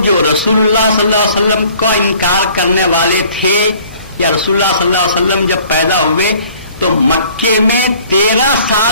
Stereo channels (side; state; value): both; inverted; correlation -0.55